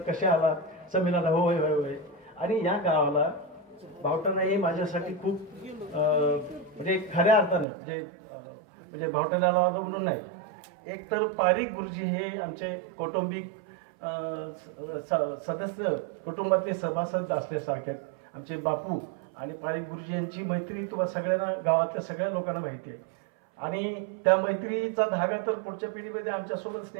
कसे आला संमेलनाला, होय होय होय. आणि या गावाला भावटाणा हे माझ्यासाठी खूप म्हणजे खऱ्या अर्थानं म्हणजे भावटाण्याला म्हणून नाही, एक तर पारिक गुरुजी हे आमचे कौटुंबिक सदस्य, कुटुंबातले सभासद असल्यासारखे आमचे बापू. आणि पारिक गुरुजी यांची मैत्री तुम्हाला सगळ्यांना, गावातल्या सगळ्या लोकांना माहिती आहे. आणि त्या मैत्रीचा धागा तर पुढच्या पिढीमध्ये आमच्यासोबत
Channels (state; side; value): drops out; left; at 7.7 s